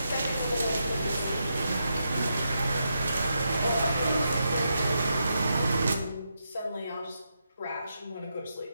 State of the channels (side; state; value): both; inverted; correlation -0.84